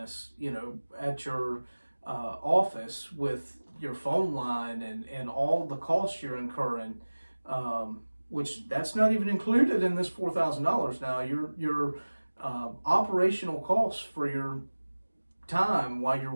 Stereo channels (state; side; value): inverted; both; correlation -1.00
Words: you know, at your office with your phone line and all the costs you're incurring, which that's not even included in this $4,000. Now your operational costs for your time while you're